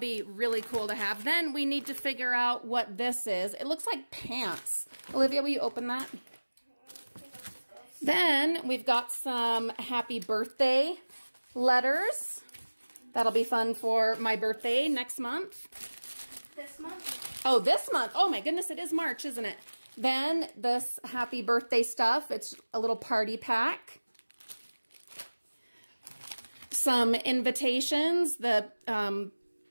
really cool to have. Then we need to figure out what this is. It looks like pants. Olivia, will you open that? Then we've got some happy birthday letters. That'll be fun for my birthday next month. This month? Oh, this month. Oh my goodness, it is March, isn't it? Then this happy birthday stuff. It's a little party pack. Some invitations. The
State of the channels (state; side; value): inverted; both; correlation -1.00